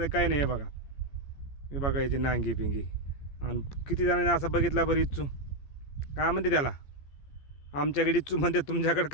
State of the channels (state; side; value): late; right; 14 ms